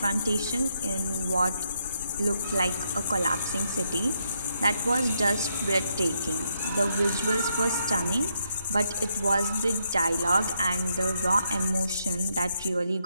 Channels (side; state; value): both; inverted; correlation -0.78